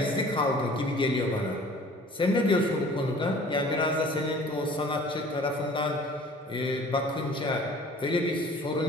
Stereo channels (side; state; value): both; normal; correlation 0.49